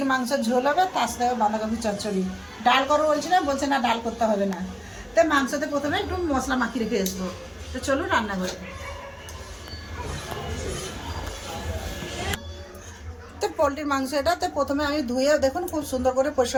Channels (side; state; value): both; identical; correlation 1.00